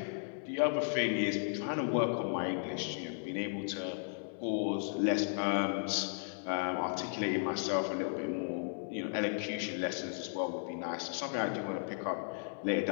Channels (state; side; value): silent; right; digital silence